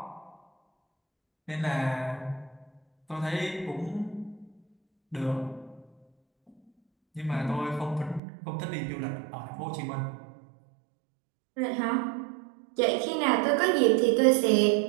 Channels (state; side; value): drops out; left; at 8.2 s